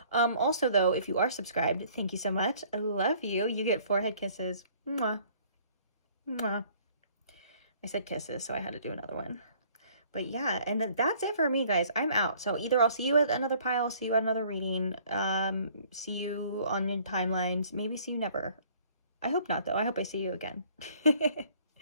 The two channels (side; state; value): both; inverted; correlation -0.57